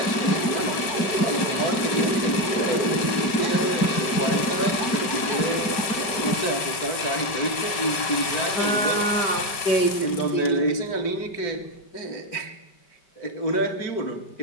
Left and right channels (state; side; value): late; right; 5.4 ms